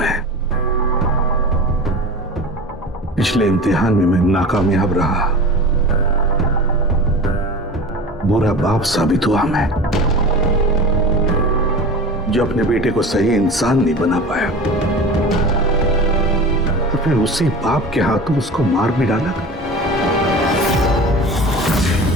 पिछले इम्तिहान में मैं नाकामयाब रहा, बुरा बाप साबित हुआ मैं, जो अपने बेटे को सही इंसान नहीं बना पाया, और फिर उसी बाप के हाथों उसको मार भी डाला।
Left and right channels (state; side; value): normal; both; correlation 0.34